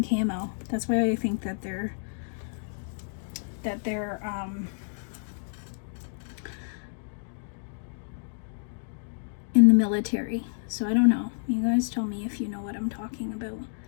camo. That's why I think that they're in the military. So I don't know. You guys tell me if you know what I'm talking about.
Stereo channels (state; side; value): silent; right; digital silence